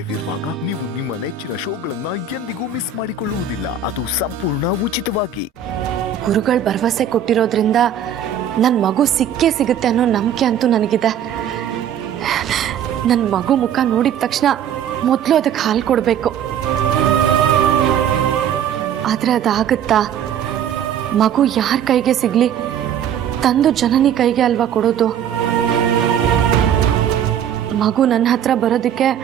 ಇರುವಾಗ ನೀವು ನಿಮ್ಮ ನೆಚ್ಚಿನ ಶೋಗಳನ್ನ ಎಂದಿಗೂ ಮಿಸ್ ಮಾಡಿಕೊಳ್ಳುವುದಿಲ್ಲ. ಅದು ಸಂಪೂರ್ಣ ಉಚಿತವಾಗಿ. ಗುರುಗಳು ಭರವಸೆ ಕೊಟ್ಟಿರೋದ್ರಿಂದ ನನ್ನ ಮಗು ಸಿಕ್ಕೇ ಸಿಗುತ್ತೆ ಅನ್ನೋ ನಂಬಿಕೆ ಅಂತೂ ನನಗಿದೆ. ನನ್ನ ಮಗು ಮುಖ ನೋಡಿದ ತಕ್ಷಣ ಮೊದಲು ಅದಕ್ಕೆ ಹಾಲು ಕೊಡಬೇಕು. ಆದರೆ ಅದಾಗುತ್ತಾ? ಮಗು ಯಾರ ಕೈಗೆ ಸಿಗಲಿ, ತಂದು ಜನನಿ ಕೈಗೆ ಅಲ್ವಾ ಕೊಡೋದು. ಮಗು ನನ್ನ ಹತ್ರ ಬರೋದಕ್ಕೆ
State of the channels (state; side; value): quieter; left; 8.3 dB